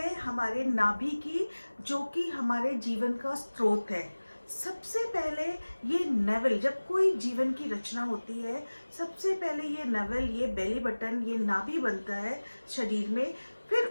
हमारे नाभि की, जो कि हमारे जीवन का स्रोत है। सबसे पहले ये नेवल, जब कोई जीवन की रचना होती है, सबसे पहले ये नेवल, ये बेली बटन, ये नाभि बनता है शरीर में। फिर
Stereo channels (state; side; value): inverted; both; correlation -1.00